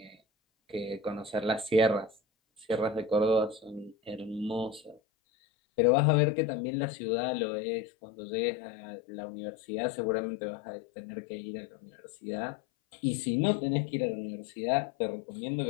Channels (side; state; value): right; drops out; at 5.0 s